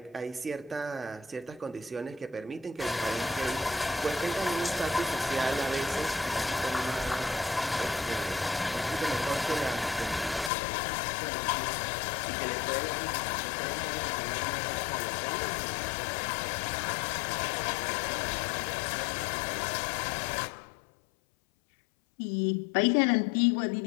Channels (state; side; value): drops out; right; at 10.5 s